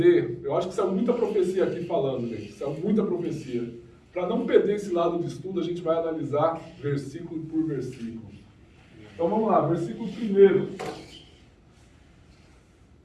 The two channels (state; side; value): identical; both; correlation 1.00